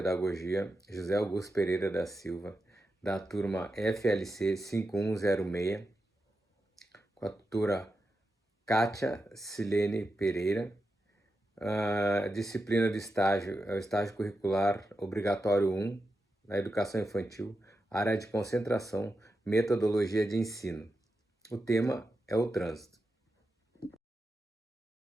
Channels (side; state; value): both; normal; correlation 0.89